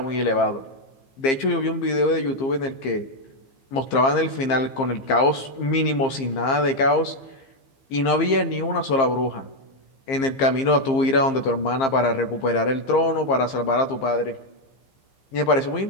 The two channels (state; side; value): late; right; 15 ms